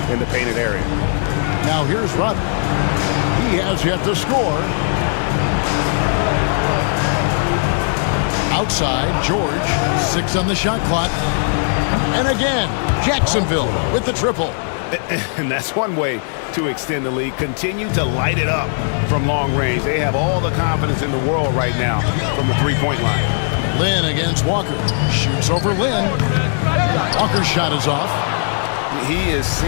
in the painted area. Now here's Rudd. He has yet to score. Outside, George. 6 on the shot clock. And again, Jacksonville with the triple. And that's one way to extend the lead. Continue to light it up from long range. They have all the confidence in the world right now from the three-point line. Lynn against Walker. Shoots over Lynn. Walker's shot is off. He is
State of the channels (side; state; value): right; silent; 67 dB below the other